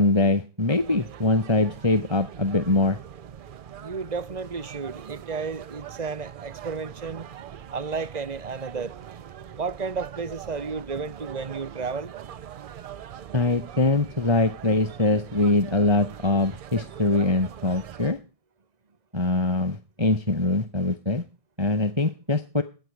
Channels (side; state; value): left; late; 1.6 ms